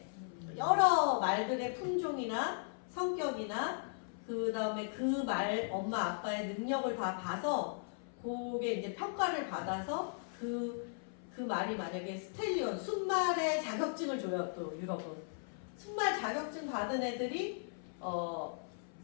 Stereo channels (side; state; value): right; silent; 53 dB below the other